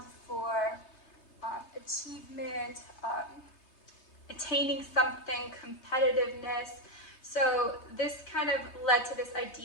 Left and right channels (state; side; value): late; right; 3.3 ms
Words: for achievement, attaining something, competitiveness. So this kind of led to this